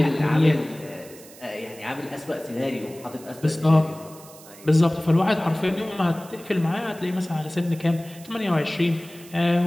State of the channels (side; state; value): right; noise; hiss, 20 dB below the sound